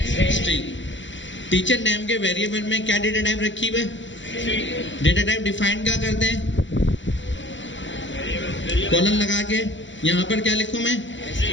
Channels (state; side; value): late; right; 0.54 ms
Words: स्ट्रिंग। टीचर नेम के वेरिएबल में क्या डेटा टाइप रखी हुई है? डेटा टाइप डिफाइन क्या करते हैं? कॉलन लगा के यहाँ पर क्या लिखूं मैं?